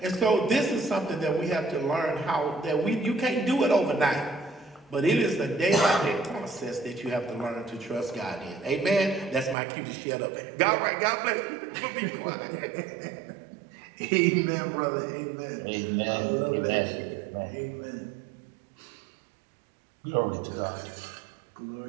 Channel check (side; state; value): left; drops out; at 9.6 s